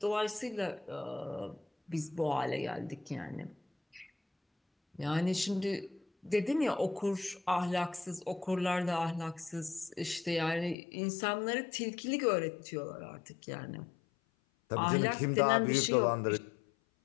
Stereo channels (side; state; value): right; drops out; at 10.8 s